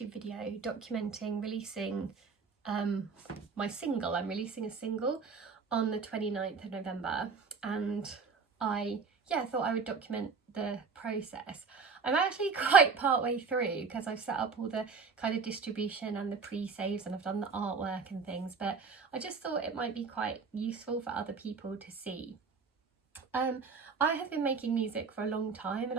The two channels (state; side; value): quieter; left; 5.1 dB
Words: video documenting releasing my single. I'm releasing a single on the 29th of November, and I thought I would document the process. I'm actually quite part way through because I've set up all the kind of distribution and the pre-saves, and I've done the artwork and things, but I just thought it might be quite useful for other people to see. I have been making music for a long time, and